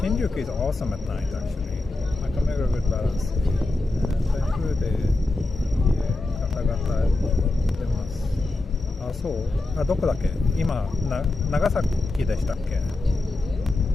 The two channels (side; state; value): right; quieter; 3.0 dB